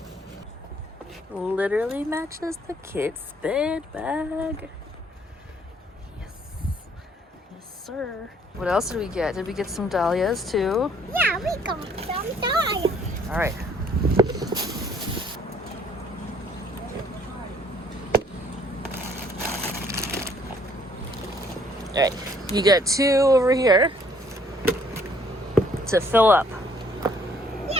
Literally matches the kid's bed bag. Yes. Yes, sir. What else did we get? Did we get some dahlias too? Yeah, we got some dahlias. All right. All right. You got two over here to fill up.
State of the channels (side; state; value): both; normal; correlation 0.62